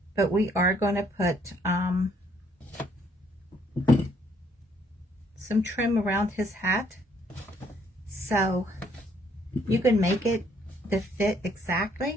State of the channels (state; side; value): normal; both; correlation 0.66